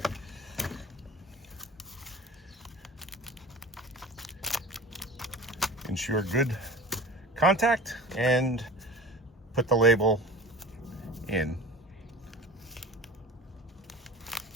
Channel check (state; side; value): normal; both; correlation 0.37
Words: Ensure good contact and put the label in.